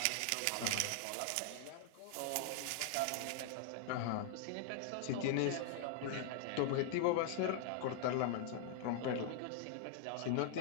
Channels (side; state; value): both; different; correlation -0.01